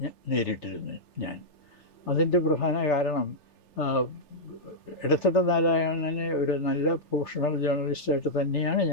നേരിട്ടിരുന്നു ഞാൻ. അതിൻ്റെ പ്രധാന കാരണം ഇടത്തട്ട നാരായണനെ ഒരു നല്ല പ്രൊഫഷണൽ ജേർണലിസ്റ്റായിട്ട് തന്നെയാണ്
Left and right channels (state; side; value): late; right; 3.3 ms